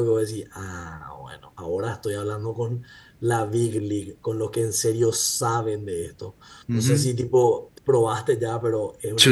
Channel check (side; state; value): both; identical; correlation 1.00